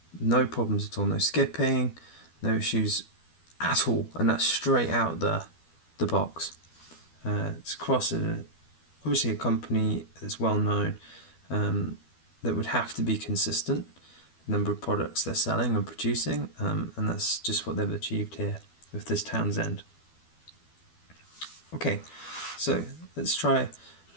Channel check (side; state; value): right; late; 12 ms